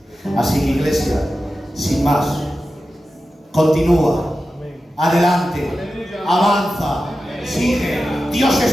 Así que, iglesia, sin más, continúa, adelante, avanza, sigue. Dios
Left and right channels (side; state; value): both; normal; correlation 0.93